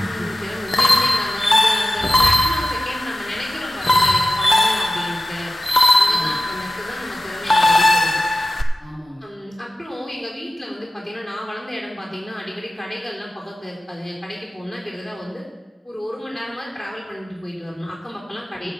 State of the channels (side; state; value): both; normal; correlation 0.95